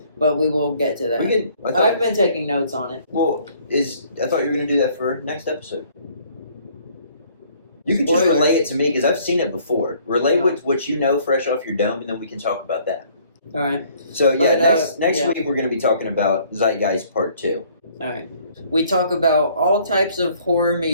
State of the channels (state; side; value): inverted; both; correlation -0.60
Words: But we will get to that. I've been taking notes on it. Well, I thought you were going to do that for next episode. You can just relay it to me, because I've seen it before. Relay what you know fresh off your dome, and then we can talk about that. All right. So, next week we're going to be talking about Zeitgeist Part 2. All right. We talk about all types of horror